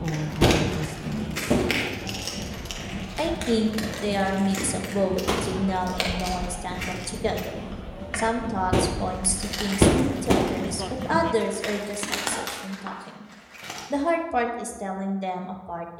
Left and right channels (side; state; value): both; identical; correlation 1.00